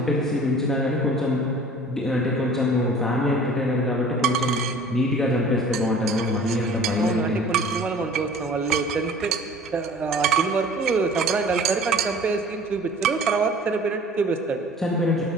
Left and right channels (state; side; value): normal; both; correlation 0.47